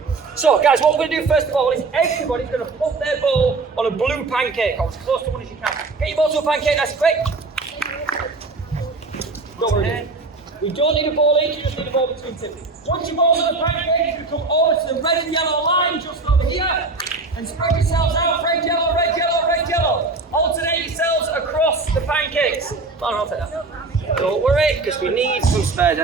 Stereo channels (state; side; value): quieter; left; 3.7 dB